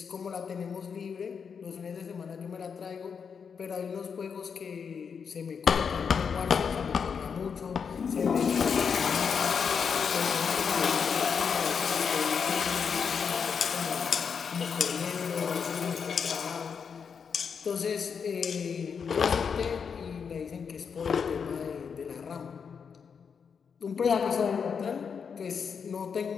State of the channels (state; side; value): quieter; right; 6.4 dB